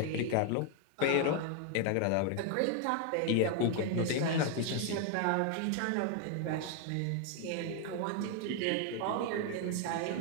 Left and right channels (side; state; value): both; different; correlation 0.00